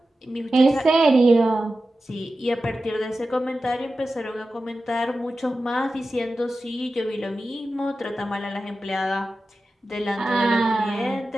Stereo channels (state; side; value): normal; both; correlation 0.93